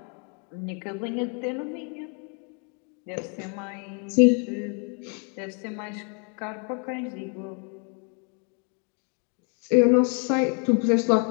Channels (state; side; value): quieter; right; 39.7 dB